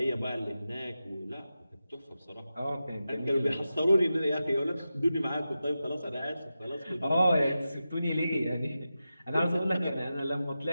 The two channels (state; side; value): inverted; both; correlation -0.92